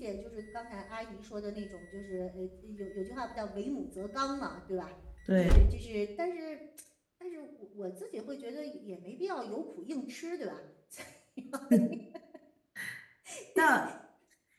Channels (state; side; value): identical; both; correlation 1.00